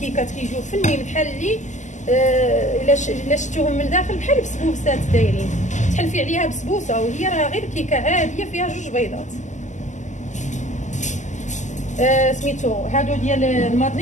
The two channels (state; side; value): late; right; 0.35 ms